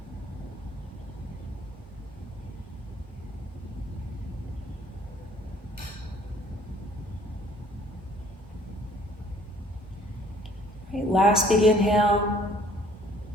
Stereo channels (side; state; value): both; normal; correlation 0.57